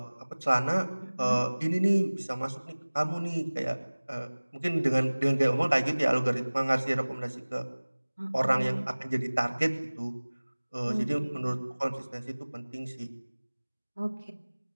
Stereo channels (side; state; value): both; inverted; correlation -1.00